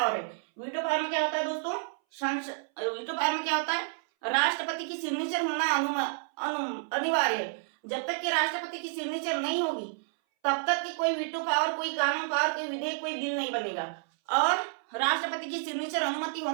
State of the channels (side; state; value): left; silent; 58 dB below the other